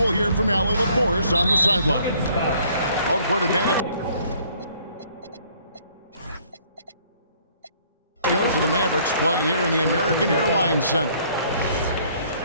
hear from Allie LaForce on the sideline. Home court advantage goes to the Mavericks, playing here in the American Airlines Center.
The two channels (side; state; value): both; inverted; correlation -0.61